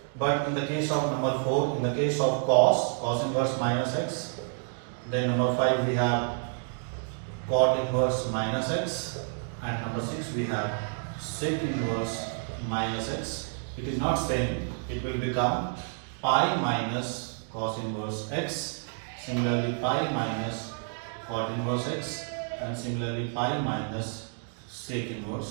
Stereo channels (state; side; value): silent; left; 58 dB below the other